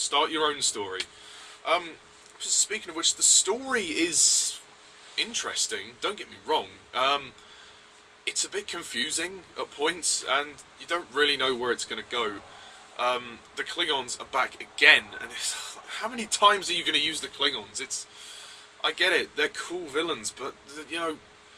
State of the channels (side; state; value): both; identical; correlation 1.00